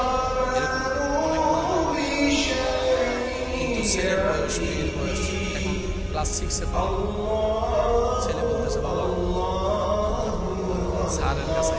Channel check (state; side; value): identical; both; correlation 1.00